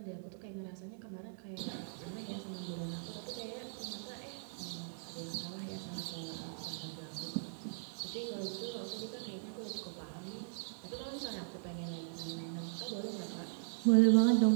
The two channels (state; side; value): silent; left; digital silence